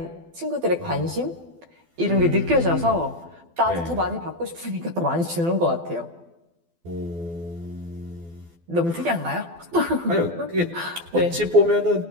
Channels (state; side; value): late; left; 12 ms